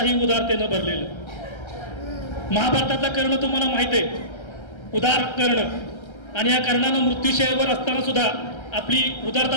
उदारतेनं भरलेलं. महाभारतातलं कर्ण तुम्हाला माहित आहे, उदार कर्ण. आणि या कर्णानं मृत्यूशयवर असताना सुद्धा आपली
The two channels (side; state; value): right; late; 1.3 ms